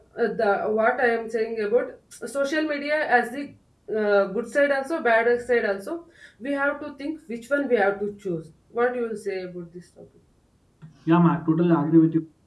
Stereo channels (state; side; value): identical; both; correlation 1.00